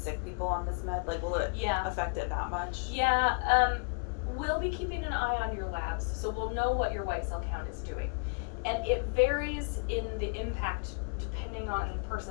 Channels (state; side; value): quieter; right; 37.2 dB